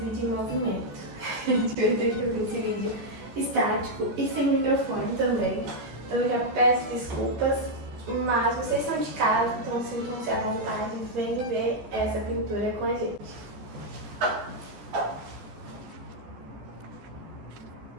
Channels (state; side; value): late; left; 14 ms